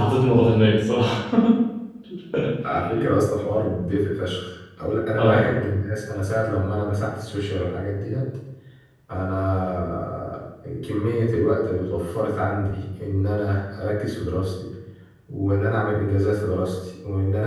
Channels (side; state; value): both; identical; correlation 1.00